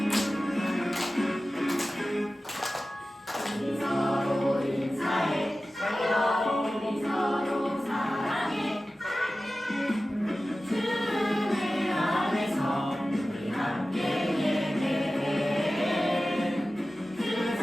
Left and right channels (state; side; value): normal; both; correlation 0.95